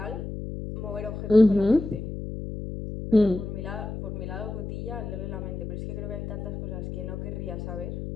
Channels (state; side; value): noise; left; hum, 6 dB below the sound